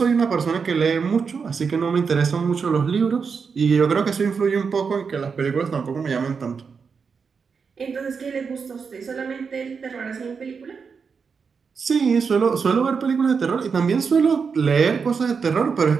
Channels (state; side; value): quieter; left; 5.7 dB